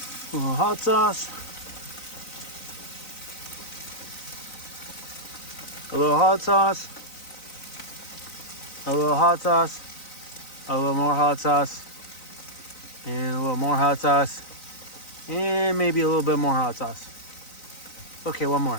A little hot sauce. A little hot sauce. A little hot sauce. A little more hot sauce. And a little more hot sauce. And maybe a little bit more hot sauce. Okay, one more.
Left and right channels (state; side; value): late; right; 3.9 ms